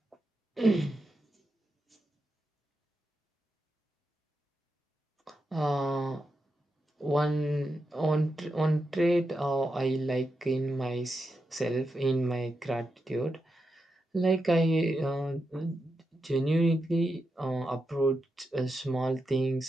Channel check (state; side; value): normal; both; correlation 0.87